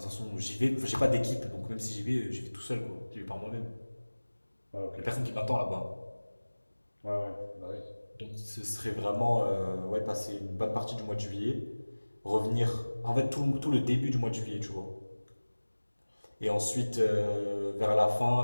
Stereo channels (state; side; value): inverted; both; correlation -1.00